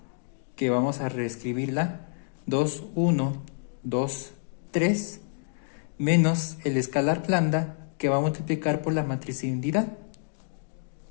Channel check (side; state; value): right; silent; digital silence